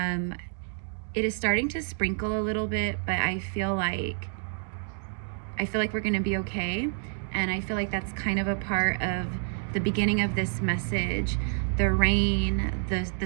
is starting to sprinkle a little bit, but I feel like we're going to be okay. And I feel like that's kind of a part of the beginning of this message. The rain,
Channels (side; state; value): left; silent; 59 dB below the other